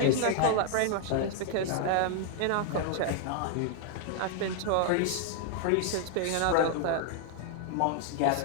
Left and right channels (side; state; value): both; different; correlation 0.00